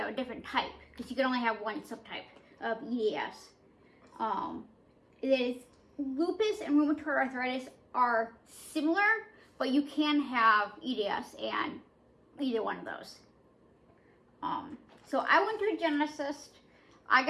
have a different type, because you can only have one subtype of EDS. Lupus and rheumatoid arthritis are similar, but you can have EDS and either one of those. So I went to a geneticist. I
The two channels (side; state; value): both; identical; correlation 1.00